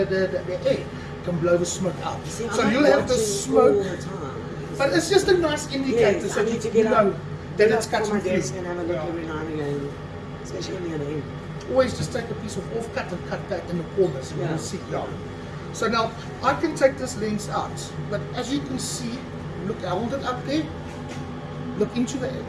air can blow the smoke out. See, so you'll have the smoke, but it's just a nice indicator so you know that it's cutting through. And have a look every now and again, especially when you're in. Always just take a piece of off-cut and cut that in the corners and you'll see. So now, I can take this lens out, but as you can see, look, I hold it up there, look into the,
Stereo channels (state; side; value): identical; both; correlation 1.00